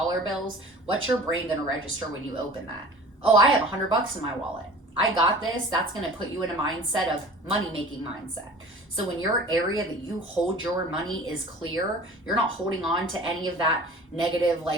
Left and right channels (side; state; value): both; normal; correlation 0.43